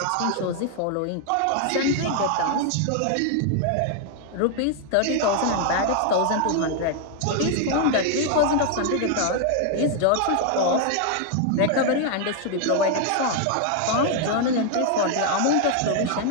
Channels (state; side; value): different; both; correlation 0.00